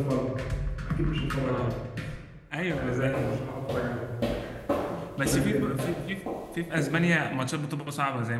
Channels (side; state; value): both; identical; correlation 1.00